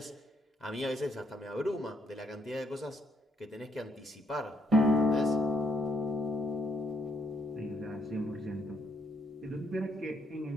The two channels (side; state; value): both; normal; correlation 0.73